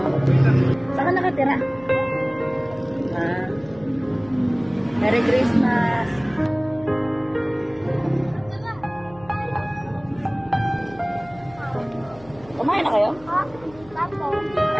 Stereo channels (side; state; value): left; noise; hum, 22 dB below the sound